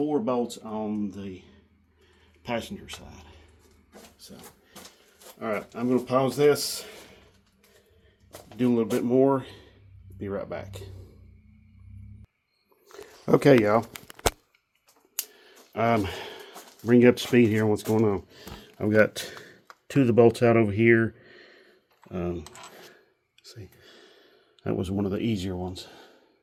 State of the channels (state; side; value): identical; both; correlation 1.00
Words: bolts on the passenger side. So, all right, I'm going to pause this, do a little bit more, be right back. Okay, y'all. Bring you up to speed here on what's going on. I've got 2 of the bolts out over here. See, that was one of the easier ones.